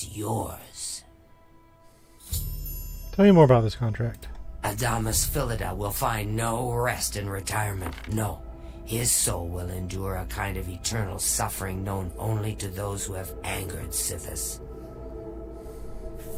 yours. Tell me more about this contract. Adamus Philida will find no rest in retirement. No. His soul will endure a kind of eternal suffering known only to those who have angered Sithis.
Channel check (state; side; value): identical; both; correlation 1.00